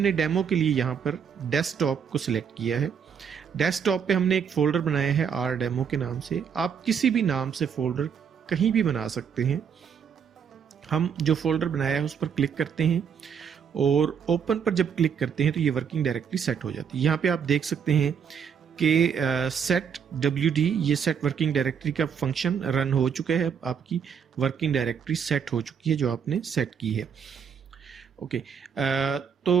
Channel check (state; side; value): quieter; left; 7.2 dB